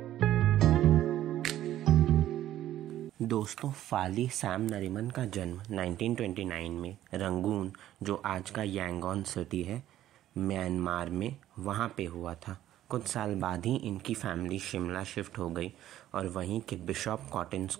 दोस्तों, फाली सैम नरीमन का जन्म 1929 में रंगून, जो आज का यांगोन सिटी है, म्यांमार में वहाँ पे हुआ था। कुछ साल बाद ही इनकी फैमिली शिमला शिफ्ट हो गई और वहीं के बिशॉप कॉटन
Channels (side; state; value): left; quieter; 12.9 dB